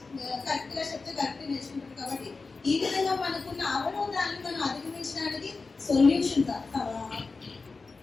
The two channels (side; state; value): right; quieter; 4.1 dB